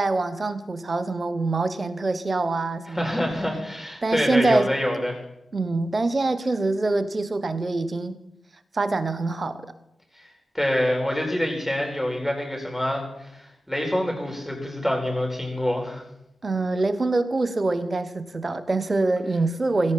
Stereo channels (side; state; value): both; normal; correlation 0.94